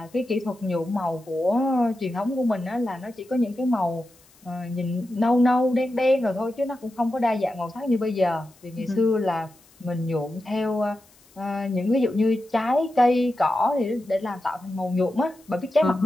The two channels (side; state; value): left; noise; hiss, 29 dB below the sound